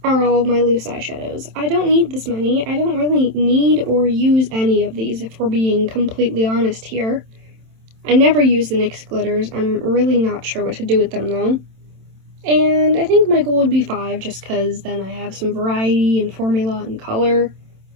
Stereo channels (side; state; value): left; late; 27 ms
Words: are all of my loose eyeshadows. I don't need this many. I don't really need or use any of these, if we're being completely honest here. I never use the NYX glitters. I'm really not sure what to do with them though. And I think my goal would be 5, just because then I have some variety and formula and color.